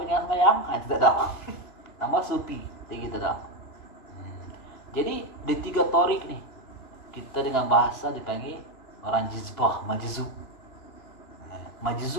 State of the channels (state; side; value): late; right; 3.0 ms